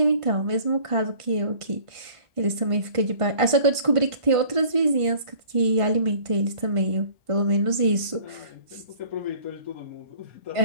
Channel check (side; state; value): left; late; 1.5 ms